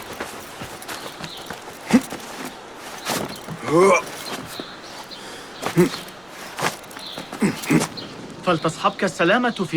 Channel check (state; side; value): noise; left; rumble, 28 dB below the sound